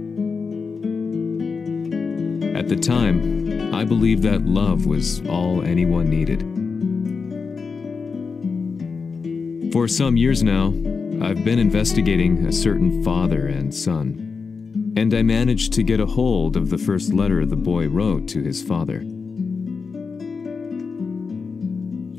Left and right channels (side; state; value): right; quieter; 5.0 dB